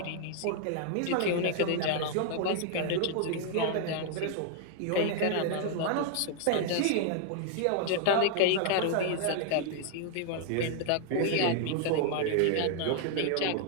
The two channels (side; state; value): both; different; correlation 0.00